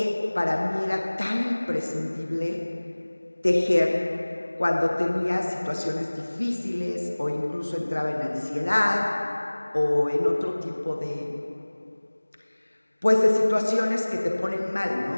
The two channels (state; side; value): inverted; both; correlation -1.00